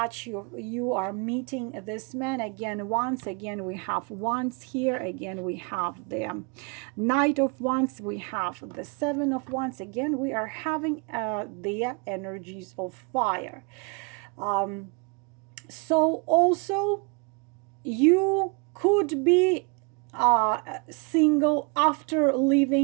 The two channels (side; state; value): left; quieter; 33.1 dB